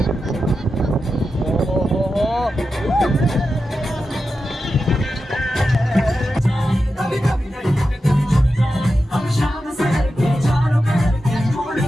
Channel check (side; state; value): both; normal; correlation 0.90